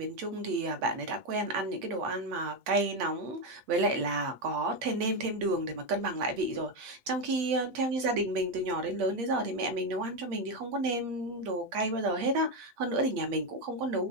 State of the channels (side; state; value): left; late; 8.6 ms